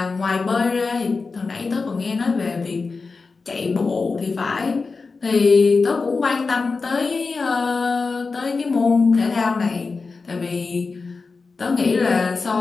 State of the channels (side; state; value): right; quieter; 4.3 dB